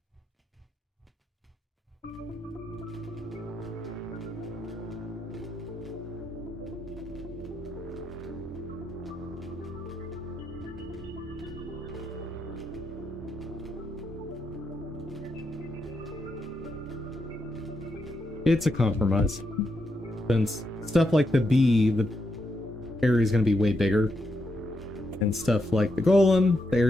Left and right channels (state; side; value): normal; both; correlation 0.82